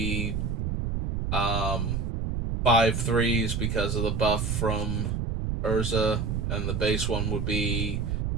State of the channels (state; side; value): noise; right; rumble, 1 dB below the sound